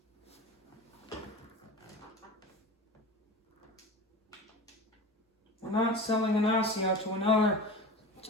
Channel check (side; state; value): both; normal; correlation 0.33